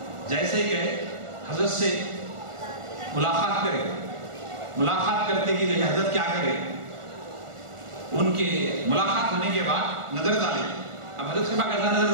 جیسے ہی گئے حضرت سے ملاقات کرے، ملاقات کرتے کہ حضرت کیا کرے؟ ان کے ملاقات ہونے کے بعد نظر ڈالے، اب حضرت سے کیسا نظر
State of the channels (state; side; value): late; left; 1.4 ms